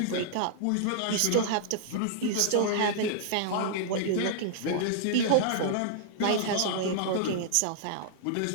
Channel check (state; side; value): different; both; correlation -0.01